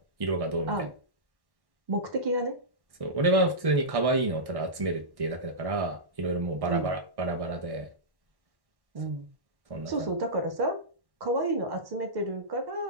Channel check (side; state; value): left; late; 1.1 ms